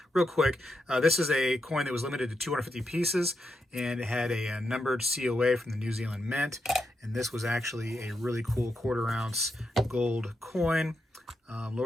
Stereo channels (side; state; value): both; normal; correlation 0.84